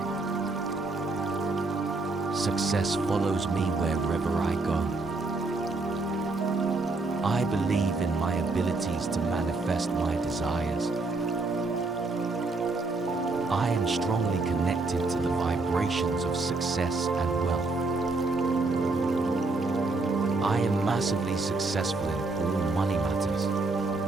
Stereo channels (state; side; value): quieter; left; 3.4 dB